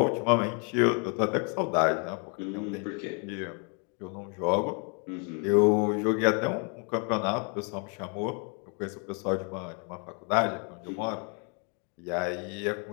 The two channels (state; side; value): quieter; right; 37.3 dB